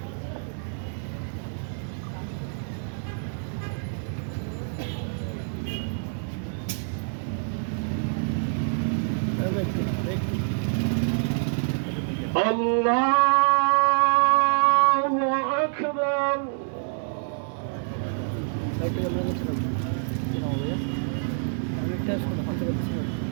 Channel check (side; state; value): left; silent; digital silence